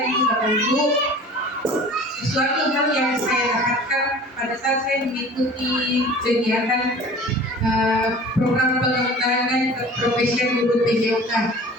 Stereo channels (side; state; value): both; normal; correlation 0.43